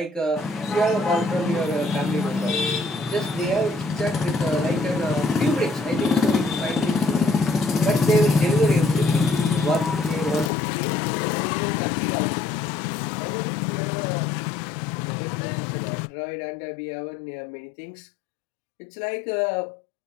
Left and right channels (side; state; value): right; drops out; at 10.5 s